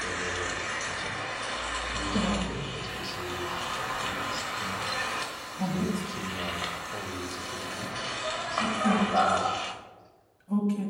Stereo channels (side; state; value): both; identical; correlation 1.00